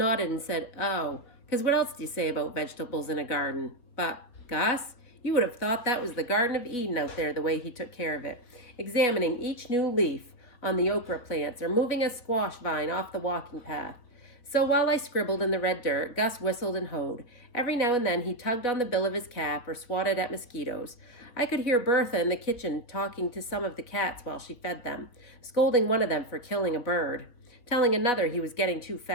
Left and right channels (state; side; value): late; right; 3.7 ms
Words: and said, "Oh," because what else do you say about vegetables in a garden? But, Gus, you would have thought that was the Garden of Eden out there, the way he took care of it, examining each new leaf on the okra plants or moving a squash vine off the walking path. So while I scribbled in the red dirt, Gus whistled and hoed. Every now and then he tugged on the bill of his cap or swatted at mosquitoes. I could hear Bertha in the kitchen talking to some of the cats while she fed them, scolding one of them for killing a bird, telling another he was getting too